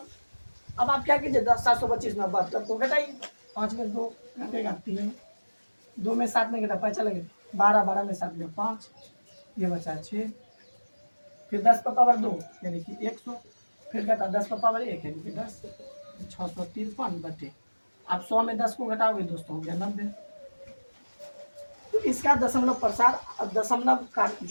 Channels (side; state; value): both; inverted; correlation -1.00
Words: अब आप क्या कीजिए, 725 में 72 को घटाइए, 5 में 2 घटेगा 3, 2 में 7 में घटा 5 चलेगा 12, 12 में 7 में 5, ये बचा 6, फिर 10 पर पावर 2 यानी कि 100, फिर घटा 10 पर पावर 1 यानी कि 10, 653 बटे, आप 100 में 10 को घटाओगे दोस्तों हो गया 90। तो इसका दशमलव प्रसार, दशमलव का